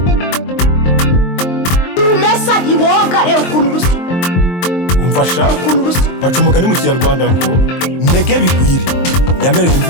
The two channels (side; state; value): right; late; 23 ms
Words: ukuntu rusa umfasha baca umugani mu kinyarwanda ngo ntege bigwire yamereye imvi